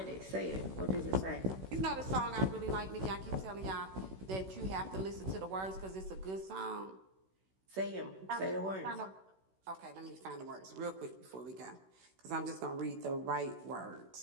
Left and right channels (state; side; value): late; left; 16 ms